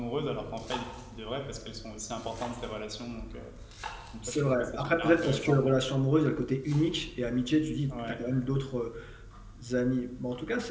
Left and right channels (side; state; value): both; identical; correlation 1.00